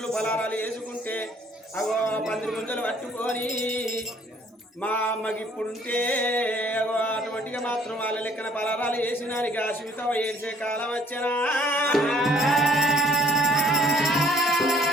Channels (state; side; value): normal; both; correlation 0.60